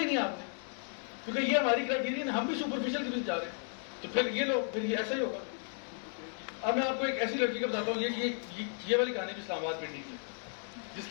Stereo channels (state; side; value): silent; right; 55 dB below the other